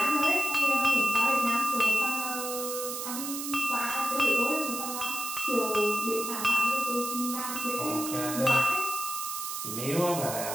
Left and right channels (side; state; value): right; noise; hiss, 5 dB below the sound